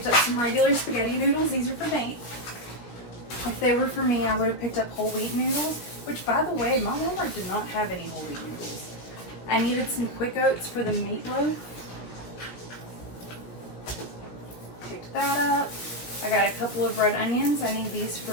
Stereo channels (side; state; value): right; late; 16 ms